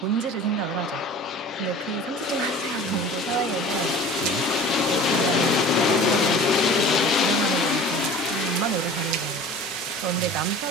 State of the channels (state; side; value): normal; both; correlation 0.42